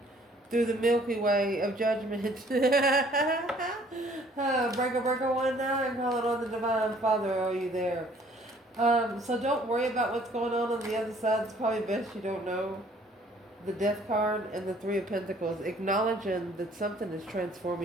through the Milky Way of judgment. Breaker 1-9, calling on the Divine Father. Are you there? So don't worry about what's going on the other side. It's probably best you don't know. The Death card and the 3 of Pentacles, acknowledging that something is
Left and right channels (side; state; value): both; normal; correlation 0.58